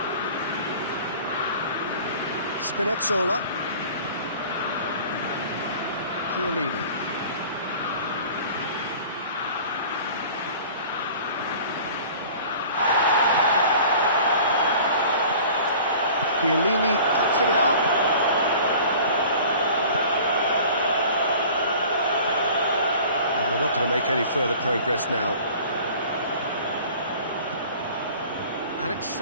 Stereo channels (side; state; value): both; inverted; correlation -0.45